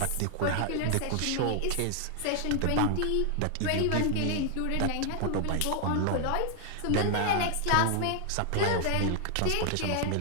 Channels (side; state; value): both; different; correlation 0.00